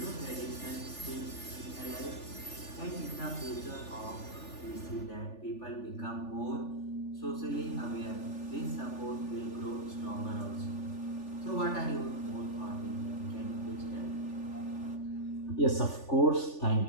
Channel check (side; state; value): right; late; 3.4 ms